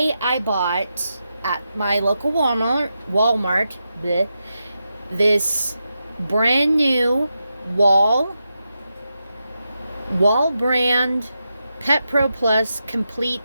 I bought at my local Walmart this brand new wall brand Pet Pro Plus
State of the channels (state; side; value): inverted; both; correlation -0.88